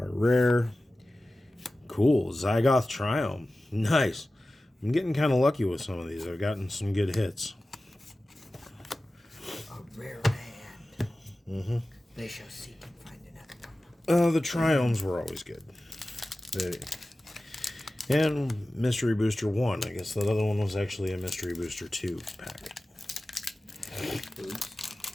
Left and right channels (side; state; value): both; normal; correlation 0.96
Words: rare. Cool. Zygoth Triumph. Nice. I'm getting kind of lucky with some of these. I've gotten some good hits. A rare land. Mm-hmm. They shall seek and find another one. The Triomes were always good. And Mystery Booster 1. I guess that other one was actually a Mystery Booster 2 pack. Oops.